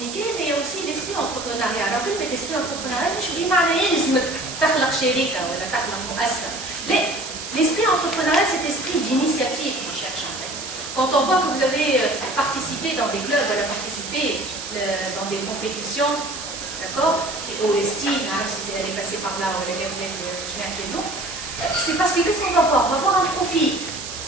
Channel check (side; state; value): right; noise; hiss, 8 dB below the sound